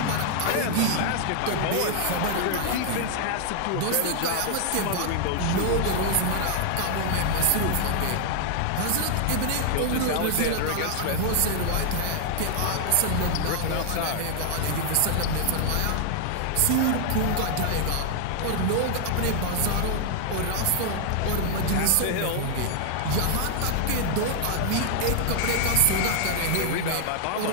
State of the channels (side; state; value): both; different; correlation 0.00